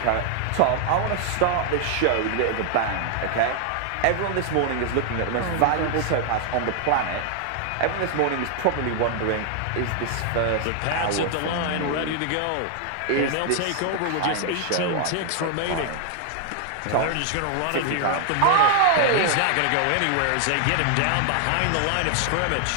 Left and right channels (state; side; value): different; both; correlation 0.00